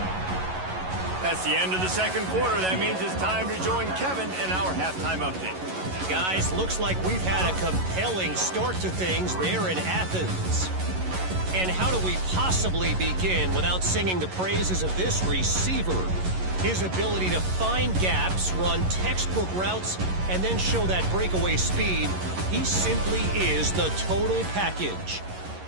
That's the end of the 2nd quarter. That means it's time to join Kevin in our halftime update. Guys, looks like we've had a compelling start to things there in Athens. And how do we possibly begin without singing the praises of this receiver? His ability to find gaps, run textbook routes, and then show that breakaway speed. He simply is the total package.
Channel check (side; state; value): left; late; 11 ms